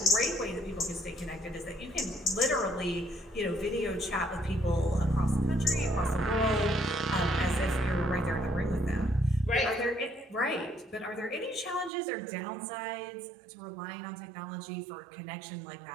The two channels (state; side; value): drops out; left; at 11.9 s